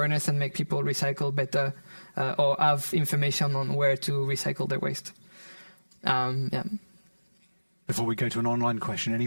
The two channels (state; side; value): inverted; both; correlation -1.00